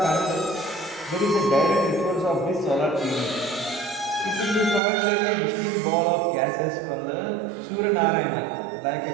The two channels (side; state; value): left; drops out; at 4.8 s